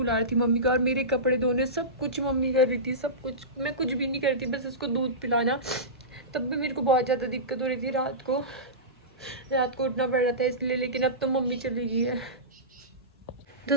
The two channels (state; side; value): normal; both; correlation -0.20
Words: रही थी मम्मी का, और मेरे कपड़े धोने सब कुछ मम्मी कर रही थी, सब कुछ। मैं कुछ भी नहीं करती, बस उसको दूध पिलाना। तब भी मेरे को बहुत ज़्यादा दिक्कत हो रही थी, रात को उठना पड़ रहा था इसलिए। लेकिन अब तो मम्मी चली गई है।